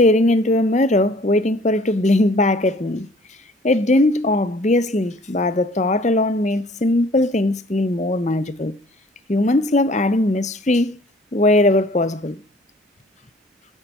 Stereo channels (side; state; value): both; normal; correlation 0.54